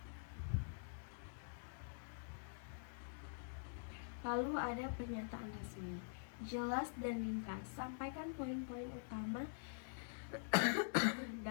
Lalu ada pernyataan resmi, jelas dan ringkas, sampaikan poin-poin utama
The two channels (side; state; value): right; silent; digital silence